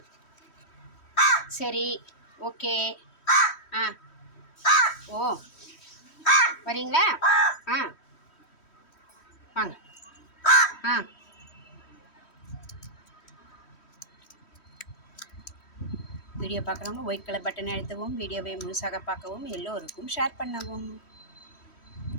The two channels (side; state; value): right; late; 3.1 ms